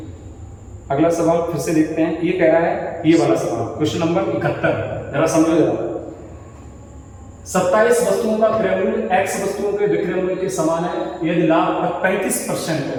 अगला सवाल फिर से देखते हैं। ये कह रहा है, ये वाला सवाल क्वेश्चन नंबर 71, जरा समझो जरा। 27 वस्तुओं का क्रय मूल्य x वस्तुओं के विक्रय मूल्य के समान है। यदि लाभ का 35%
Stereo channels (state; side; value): identical; both; correlation 1.00